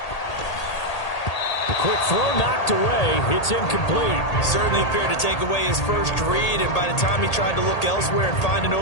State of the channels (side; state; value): right; late; 1.8 ms